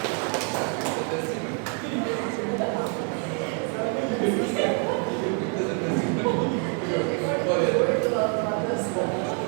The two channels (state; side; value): quieter; left; 39.4 dB